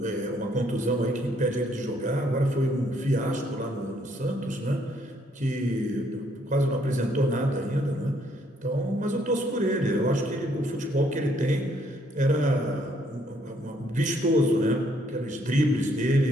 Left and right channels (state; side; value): normal; both; correlation 0.68